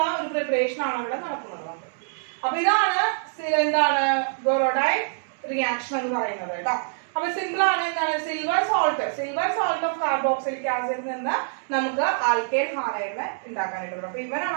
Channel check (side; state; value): left; silent; digital silence